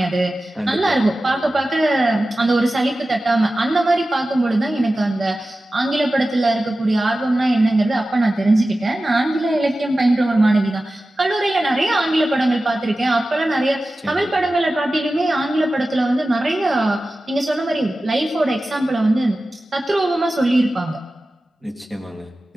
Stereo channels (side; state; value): both; normal; correlation 0.95